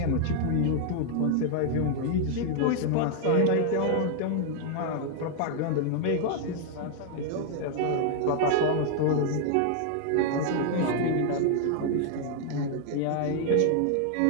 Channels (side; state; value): both; different; correlation 0.00